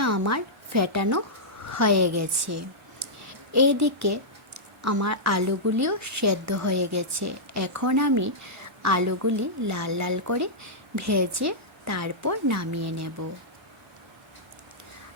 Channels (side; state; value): both; normal; correlation -0.10